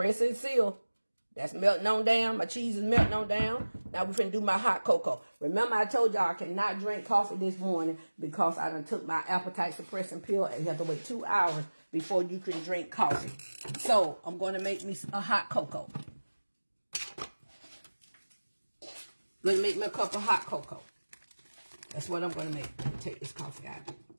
and seal. That's melting on down. My cheese is melting on down. Now we're finna do my hot cocoa. Remember I told y'all I cannot drink coffee this morning because I done took my appetite suppressing pill and you have to wait 2 hours before you can drink coffee. So I'm going to make me a hot cocoa. Going to make me a cup of hot cocoa. That's what I'm going to make. Take this coffee out.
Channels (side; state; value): both; inverted; correlation -1.00